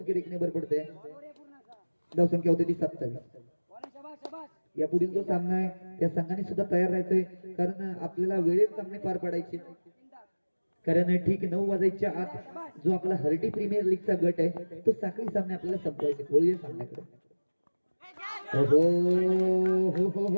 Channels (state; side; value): inverted; both; correlation -1.00